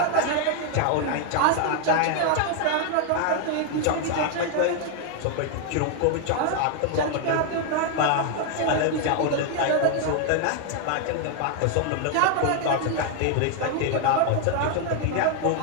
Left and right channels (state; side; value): different; both; correlation 0.00